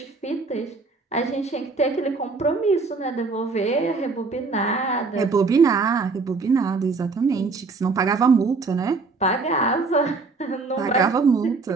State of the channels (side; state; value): left; quieter; 4.2 dB